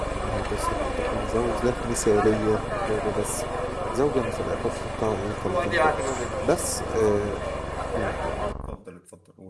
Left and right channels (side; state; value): both; identical; correlation 1.00